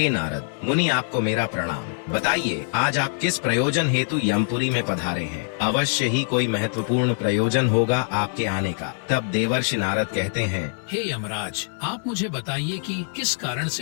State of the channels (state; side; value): silent; right; digital silence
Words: नारद मुनि, आपको मेरा प्रणाम। बताइए, आज आप किस प्रयोजन हेतु यमपुरी में पधारे हैं? अवश्य ही कोई महत्वपूर्ण प्रयोजन होगा आपके आने का। तब देवर्षि नारद कहते हैं, हे यमराज, आप मुझे बताइए कि किस कारण